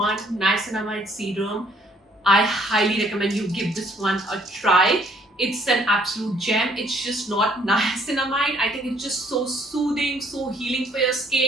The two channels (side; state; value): both; normal; correlation 0.63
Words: niacinamide serum, I highly recommend you give this one a try. It's an absolute gem. It's just not niacinamide. I think it's just so soothing, so healing for your